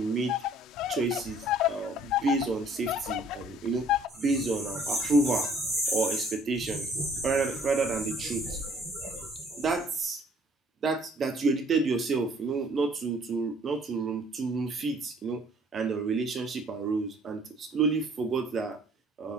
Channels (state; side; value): normal; both; correlation 0.58